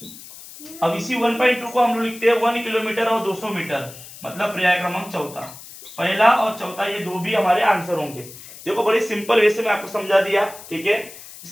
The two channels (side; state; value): left; noise; hiss, 16 dB below the sound